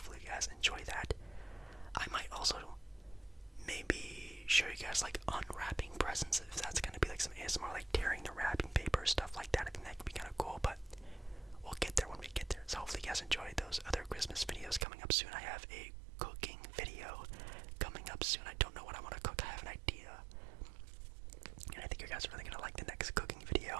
you guys enjoy that. I might also maybe show you guys like unwrapping presents, if that's going to be like some ASMR, like tearing the wrapping paper, stuff like that. I think that could be kind of cool, but we'll get there when we get there. So hopefully you guys enjoy those other Christmas videos coming up soon. I have a cooking video coming up soon. I don't know what I want to cook. I have an idea, and I think you guys are really going to like the next cooking video.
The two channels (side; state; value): left; drops out; at 14.9 s